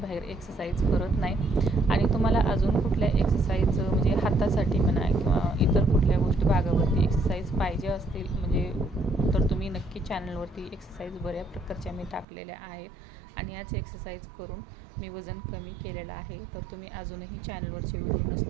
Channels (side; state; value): left; drops out; at 12.2 s